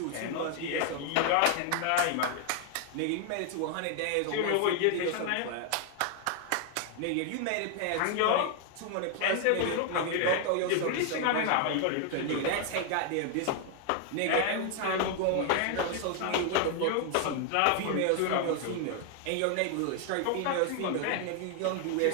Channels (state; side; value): different; both; correlation 0.00